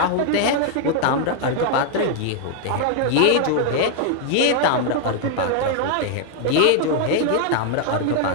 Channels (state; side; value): different; both; correlation 0.00